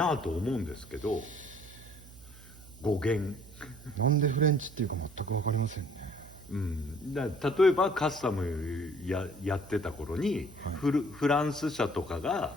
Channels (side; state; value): right; noise; hum, 20 dB below the sound